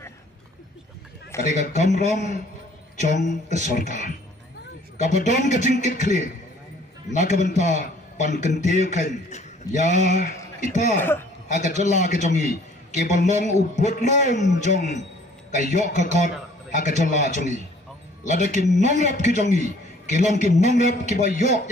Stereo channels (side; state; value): both; normal; correlation 0.56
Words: kadai kamram chong ke sarkar kabadon kejingkit kli nakabenta pan kentiu kan ya ita agak jela kejongi ke balong ubut lom jong kayok kakot agak jela jongi ladakin nongrap kejongi ke long ke nongrap ke bayok